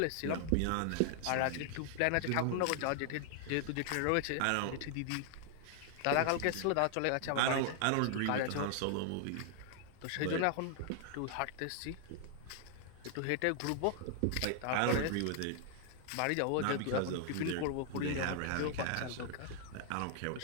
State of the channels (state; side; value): different; both; correlation 0.00